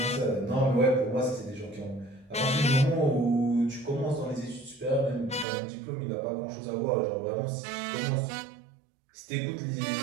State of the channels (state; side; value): drops out; left; at 5.5 s